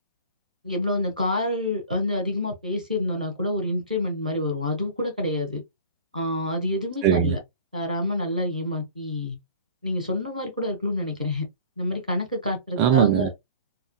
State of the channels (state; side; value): inverted; both; correlation -0.41